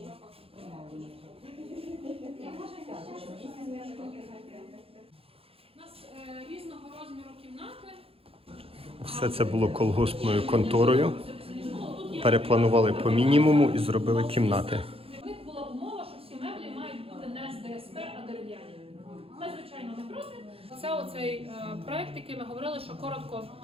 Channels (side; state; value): left; late; 0.27 ms